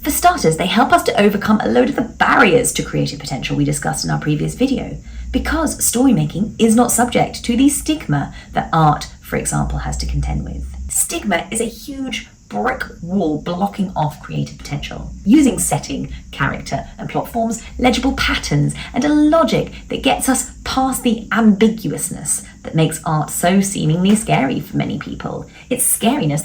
For starters, they help us to overcome a load of the barriers to creative potential we discussed in our previous video, because story making is not subject to the stigma that art, for example, has to contend with. Stigma is a huge brick wall blocking off creative potential. Using setting, character, and plot forms legible patterns and a logic that gets us past the ambiguousness that makes art so seemingly scary for many people. It's scariness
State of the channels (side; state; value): both; identical; correlation 1.00